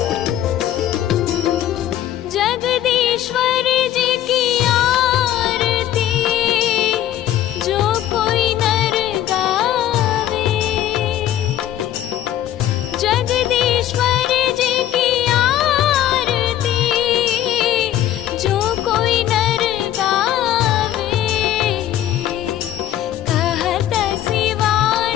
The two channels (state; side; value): quieter; right; 12.2 dB